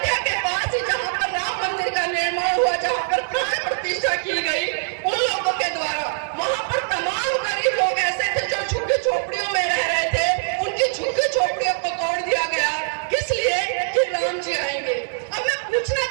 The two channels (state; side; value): silent; left; 64 dB below the other